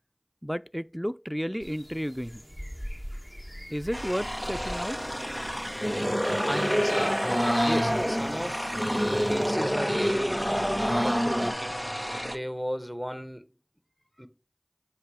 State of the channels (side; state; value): both; identical; correlation 1.00